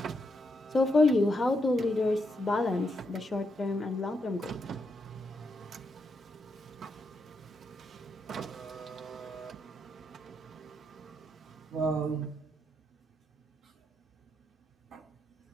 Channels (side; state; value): both; normal; correlation 0.81